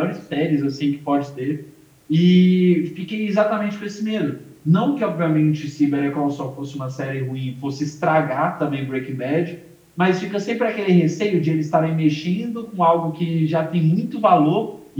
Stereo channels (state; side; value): identical; both; correlation 1.00